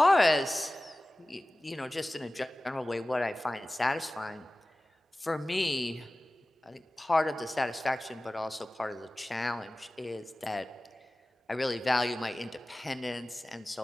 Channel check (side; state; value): both; normal; correlation 0.97